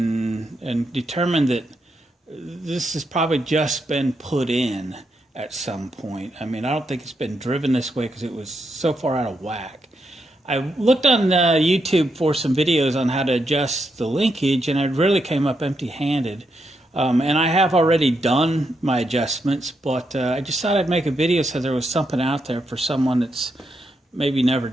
determined that this has probably just been put in at some point. I mean, I don't think it's been driven this way because it was so far out of whack. I looked on YouTube for some videos on how to adjust the linkage, and I really came up empty-handed. And I have already done my adjustments, but I just thought I'd make a video so there was something out there for someone that's maybe never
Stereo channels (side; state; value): both; normal; correlation 0.82